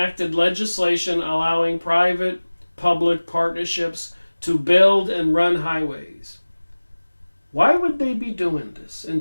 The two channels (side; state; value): both; inverted; correlation -1.00